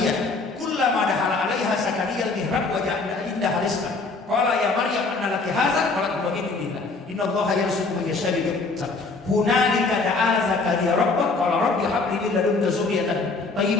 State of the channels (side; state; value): right; quieter; 3.8 dB